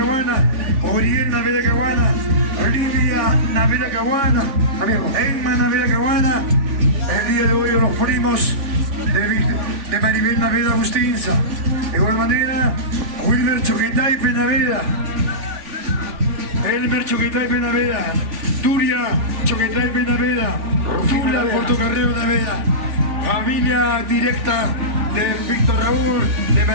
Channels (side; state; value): left; late; 3.5 ms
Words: Oriel Naveda Caguana, Olivia Naveda Caguana, Emma Naveda Caguana. El día de hoy los primos de Maribel Naveda Agustinza. De igual manera, Wilmer Choquetaipe Naveda, Elmer Choquetaipe Naveda, Turia Choquetaipe Naveda, Tula Portocarrero Naveda, familia directa de Víctor Raúl de